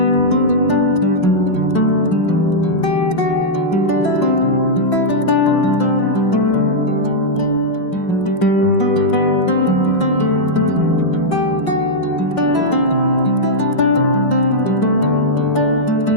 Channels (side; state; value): right; late; 5.5 ms